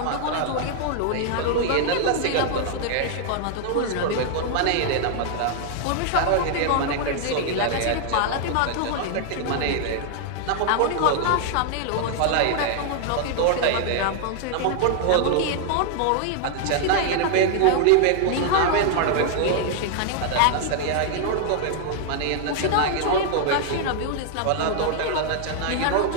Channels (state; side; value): different; both; correlation 0.00